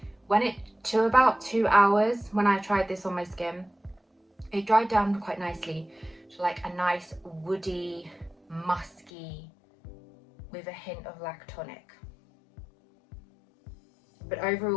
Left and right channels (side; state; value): right; drops out; at 9.1 s